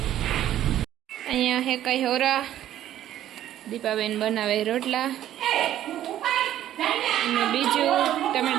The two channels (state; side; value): quieter; left; 12.1 dB